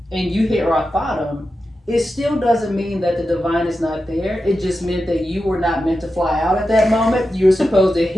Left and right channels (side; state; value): both; normal; correlation 0.91